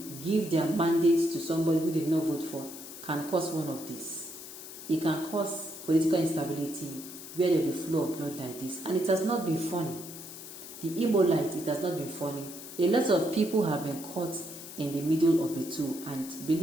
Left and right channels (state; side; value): noise; left; hiss, 13 dB below the sound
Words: give their mandates to somebody who did not vote for can cause one of these. It can cause political instability where there will be flow of blood like this. And it has not been funny. The Imo light, it has not been funny. A lot of people have been caught in the middle of the two. And